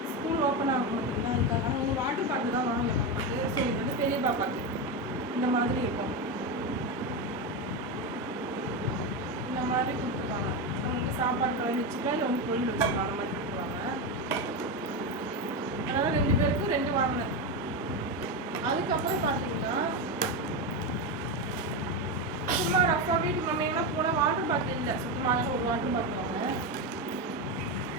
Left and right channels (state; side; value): normal; both; correlation 0.13